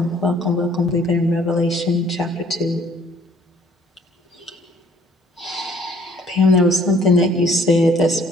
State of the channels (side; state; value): both; normal; correlation 0.59